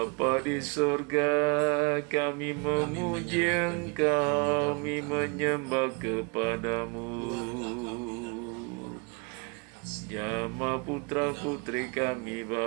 di surga, kami memuji Engkau, kami menyembah kepadamu. Jama putra putri kami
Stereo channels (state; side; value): quieter; left; 31.8 dB